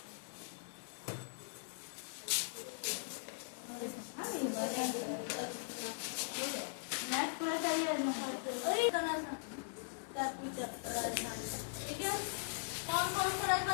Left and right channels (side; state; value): right; silent; 51 dB below the other